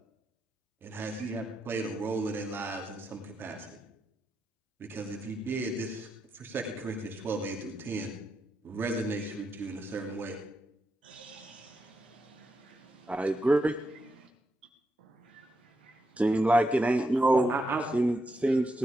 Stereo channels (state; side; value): normal; both; correlation 0.84